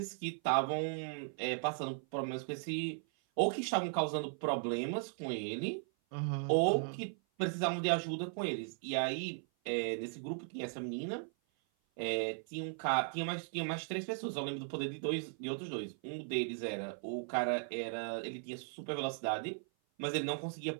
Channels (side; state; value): left; silent; 53 dB below the other